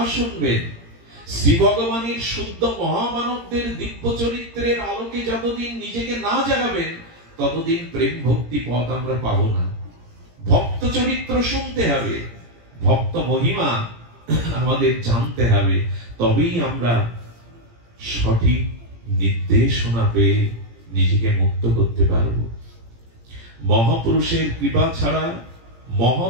শুনবেন, শ্রী ভগবানের শুদ্ধ মহামানবদের দিব্য চরিত্রের আলোকে যতদিন নিজেকে না জাগাবেন, ততদিন প্রেম ভক্তি পথ আমরা পাবো না। ভক্ত চরিত্র শুনতে হবে, ভক্ত মহিমা আমাদের জানতে হবে, তবেই আমরা সঠিক নির্দেশনা পেয়ে নিজেকে মুক্ত করতে পারবো। মহাপুরুষের কৃপা ছাড়া,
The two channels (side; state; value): left; late; 17 ms